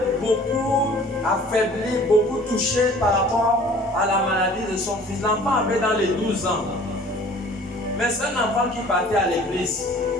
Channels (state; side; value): normal; both; correlation 0.50